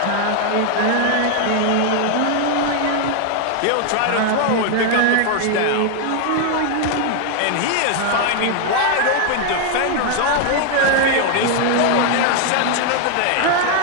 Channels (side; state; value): both; different; correlation 0.00